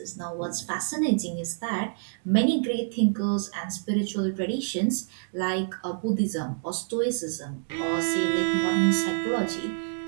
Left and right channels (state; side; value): silent; left; digital silence